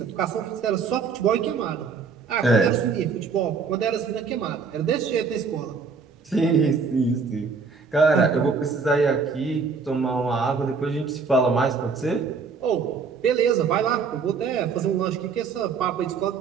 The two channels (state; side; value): quieter; left; 5.2 dB